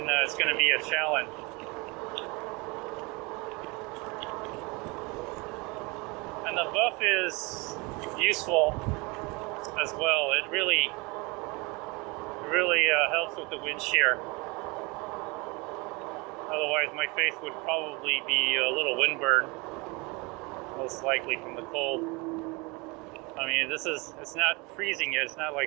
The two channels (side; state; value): left; quieter; 26.9 dB